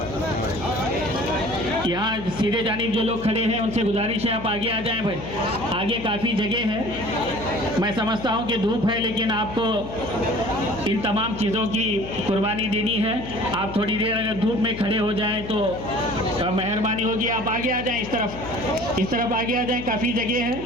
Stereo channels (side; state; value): left; noise; hum, 10 dB below the sound